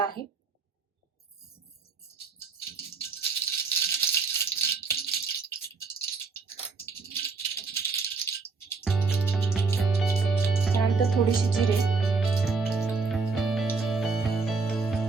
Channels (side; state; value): left; quieter; 4.5 dB